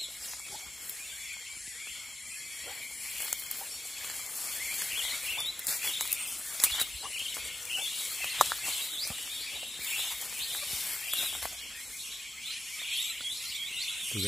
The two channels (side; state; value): both; normal; correlation 0.92